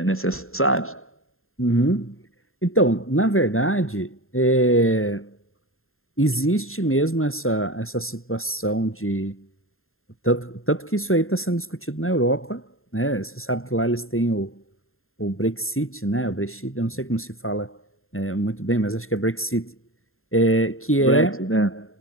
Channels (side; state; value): right; late; 0.61 ms